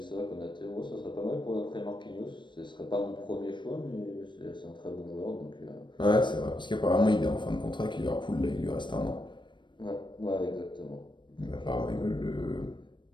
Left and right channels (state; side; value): late; right; 0.22 ms